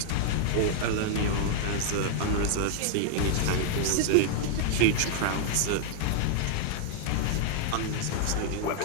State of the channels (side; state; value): both; different; correlation -0.01